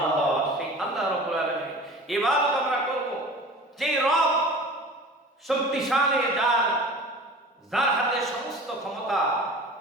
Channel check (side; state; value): both; normal; correlation 0.40